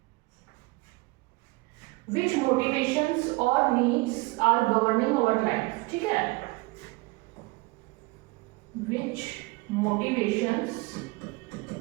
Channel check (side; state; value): left; quieter; 24.2 dB